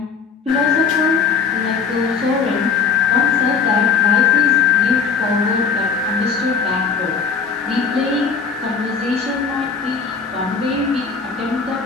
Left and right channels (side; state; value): right; quieter; 5.8 dB